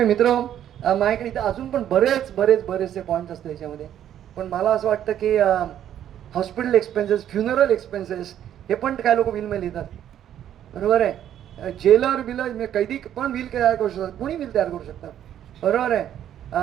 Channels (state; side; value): quieter; left; 10.7 dB